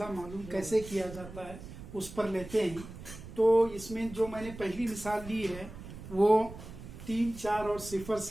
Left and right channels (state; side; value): noise; right; rumble, 14 dB below the sound